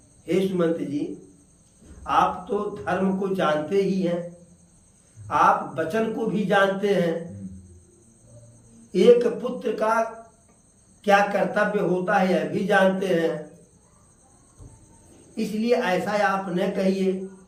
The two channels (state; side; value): identical; both; correlation 1.00